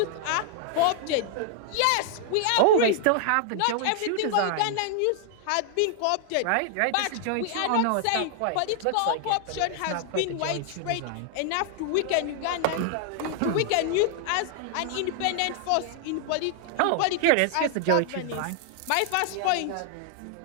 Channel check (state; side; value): different; both; correlation 0.00